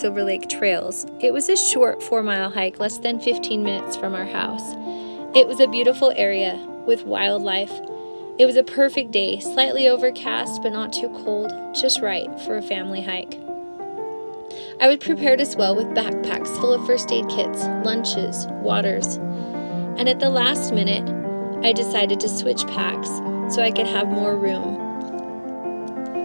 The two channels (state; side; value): inverted; both; correlation -1.00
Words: Lake trails. It was a short 4-mile hike, less than 15 minutes from our house. It was a beautiful area with wildlife. It was a perfect day, slightly overcast but not too cold, just right for a family hike. I was prepared as well with backpacks full of first aid kits, lunches, waters, and at the last minute, I decided to switch packs so I could have more room.